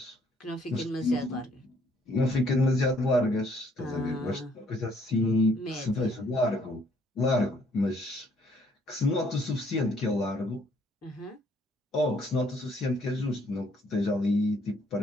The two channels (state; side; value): normal; both; correlation 0.65